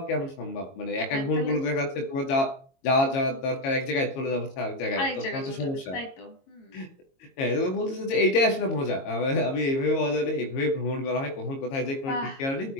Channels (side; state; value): right; late; 22 ms